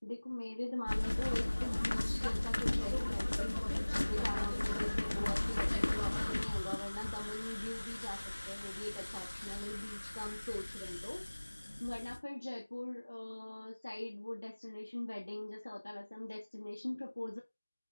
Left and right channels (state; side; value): inverted; both; correlation -1.00